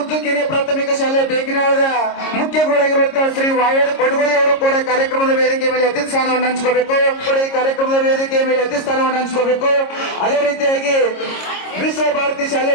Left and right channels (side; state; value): right; late; 26 ms